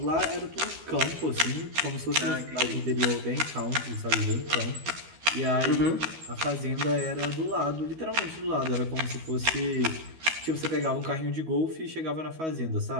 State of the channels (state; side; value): late; left; 13 ms